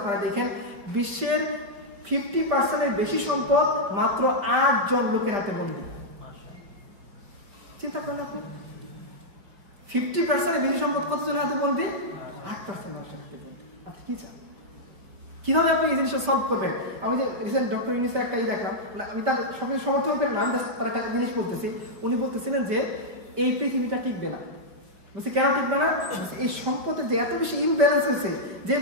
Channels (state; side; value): late; left; 5.3 ms